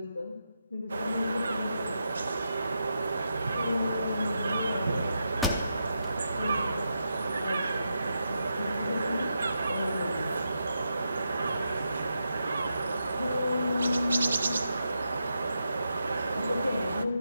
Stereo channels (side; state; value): both; inverted; correlation -0.85